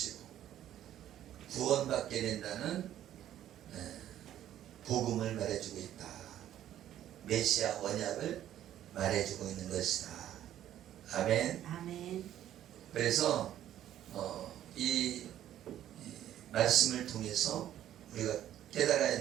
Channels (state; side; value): quieter; left; 11.8 dB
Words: 구원받게 된다는 복음을 말해주고 있다. 메시아 언약을 말해주고 있는 것이다. 아멘. 아멘. 그래서 이 말씀을 통해서 우리가 깨달아야